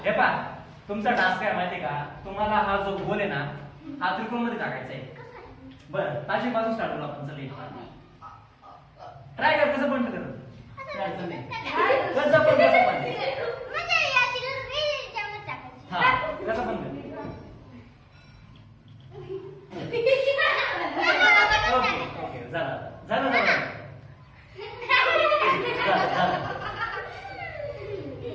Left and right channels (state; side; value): identical; both; correlation 1.00